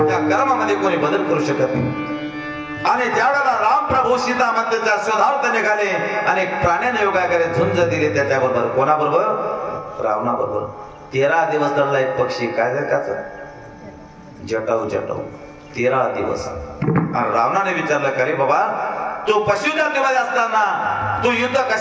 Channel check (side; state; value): both; identical; correlation 1.00